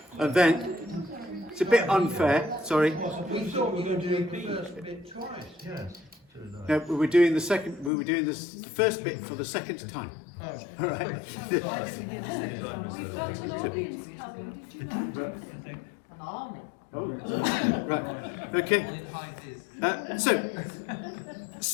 And then it's a bit unfair, sorry. We thought we were going to do the first bit twice. No, we were doing the first bit for the second time. Oh. All right. Right. Okay. So,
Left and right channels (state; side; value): drops out; right; at 7.9 s